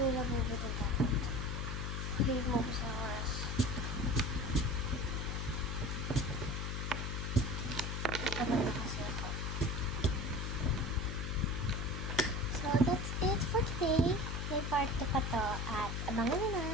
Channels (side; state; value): left; noise; hum, 2 dB below the sound